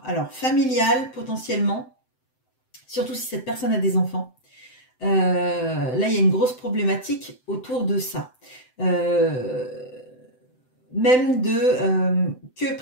alors familiales potentiellement, surtout si cette personne a des enfants. Là, il y a une grosse problématique autour de ça. Même de que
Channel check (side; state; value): right; late; 7.8 ms